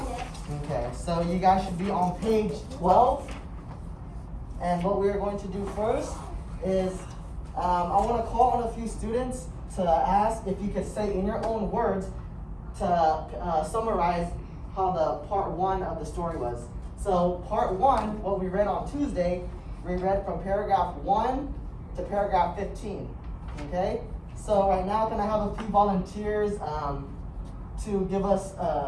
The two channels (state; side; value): identical; both; correlation 1.00